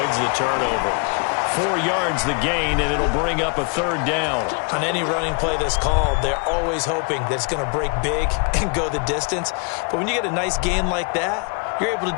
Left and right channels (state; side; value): quieter; right; 36.1 dB